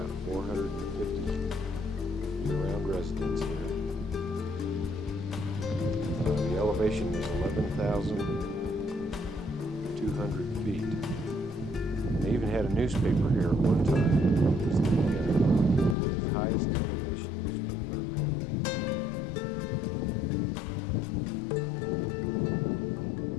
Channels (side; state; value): right; drops out; at 16.0 s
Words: 450 year-round residents here. The elevation is 11,200 feet. They even had a newspaper here at one time. It was the highest elevation newspaper, apparently.